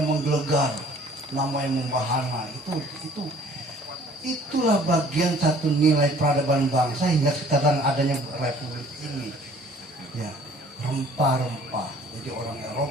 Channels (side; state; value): both; normal; correlation 0.54